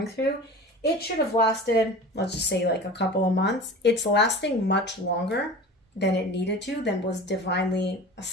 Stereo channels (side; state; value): both; normal; correlation 0.37